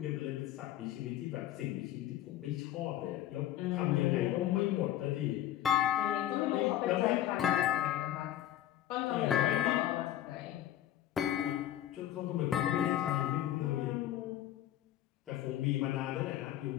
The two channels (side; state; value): right; quieter; 12.7 dB